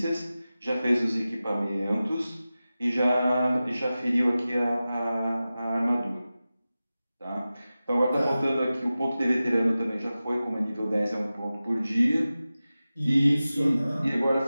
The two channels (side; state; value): both; inverted; correlation -0.95